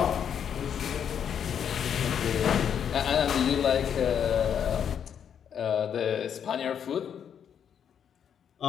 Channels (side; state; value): right; quieter; 8.3 dB